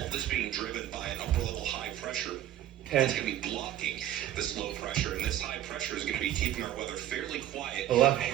this being driven by an upper level high pressure 10. It's going to be blocking this low pressure, and this high pressure is going to be keeping our weather fairly quiet 11.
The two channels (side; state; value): left; quieter; 12.4 dB